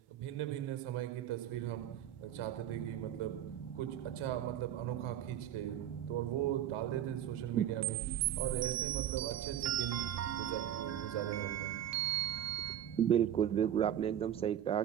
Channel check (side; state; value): left; quieter; 10.7 dB